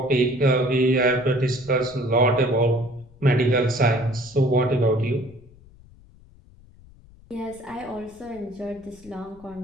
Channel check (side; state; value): left; noise; rumble, 24 dB below the sound